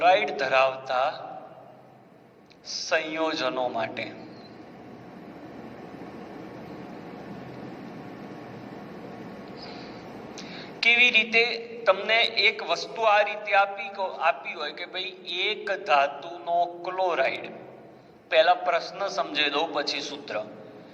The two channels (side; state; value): both; identical; correlation 1.00